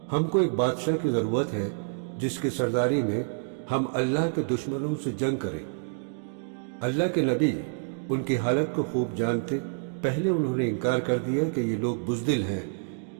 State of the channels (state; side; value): silent; left; digital silence